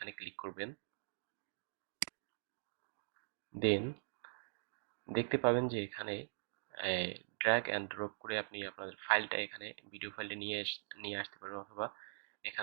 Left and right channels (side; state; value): left; silent; digital silence